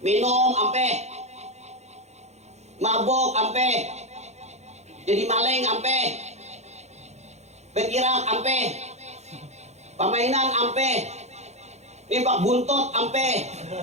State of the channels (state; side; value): late; left; 0.32 ms